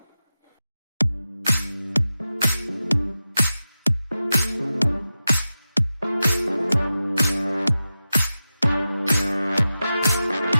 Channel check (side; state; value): both; inverted; correlation -0.93